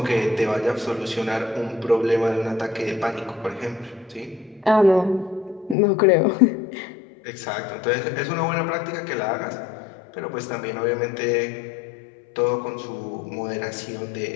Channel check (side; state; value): right; drops out; at 5.8 s